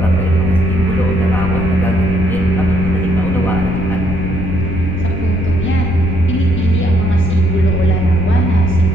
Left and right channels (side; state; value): left; noise; rumble, 7 dB below the sound